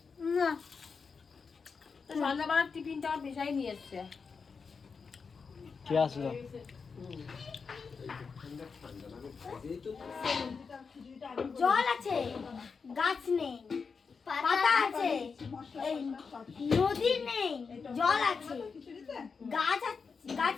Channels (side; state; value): right; quieter; 5.3 dB